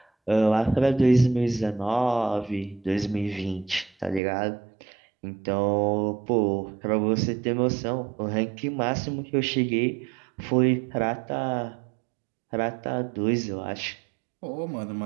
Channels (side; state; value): left; drops out; at 4.2 s